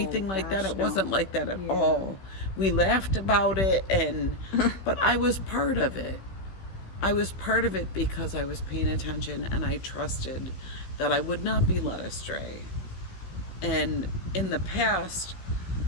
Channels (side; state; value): right; late; 16 ms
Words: like that. It wasn't like that at all. We laughed about it, but I was part of it. I was part of it because I was paying attention, and I trusted that I would not be led astray. And in the past,